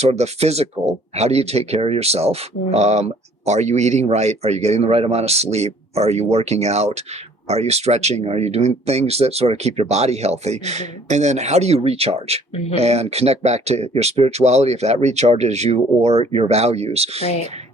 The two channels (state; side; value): normal; both; correlation 0.57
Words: of the physical. How do you take care of yourself? Are you eating right? Are you getting the right amount of sleep? Are you working out? Are you stretching? Are you doing things that sort of keep your body healthy? And then how do you recharge and connect back to your spirituality, if that recharges you, or your values? Right.